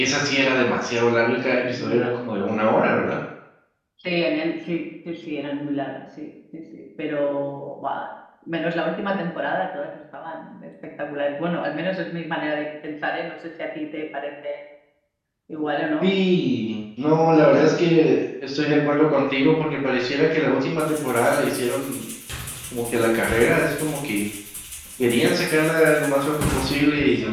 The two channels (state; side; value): identical; both; correlation 1.00